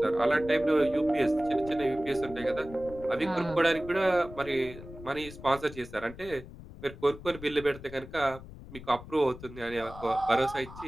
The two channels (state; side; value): noise; left; rumble, 15 dB below the sound